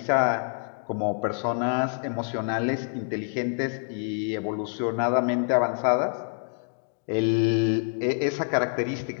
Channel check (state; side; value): silent; right; 60 dB below the other